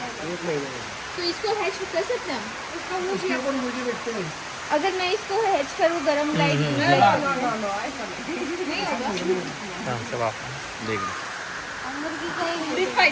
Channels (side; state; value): both; identical; correlation 1.00